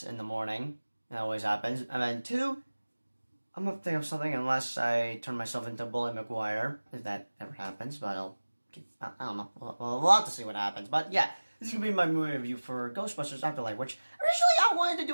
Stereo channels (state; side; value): inverted; both; correlation -1.00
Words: in the morning. That always happens. And then two, I'm gonna think of something unless I turn myself into Bully McGuire, if that ever happens, but I don't know. We'll have to see what happens. But yeah, this is gonna be my movie review for Ghostbusters Afterlife, which originally I wanted to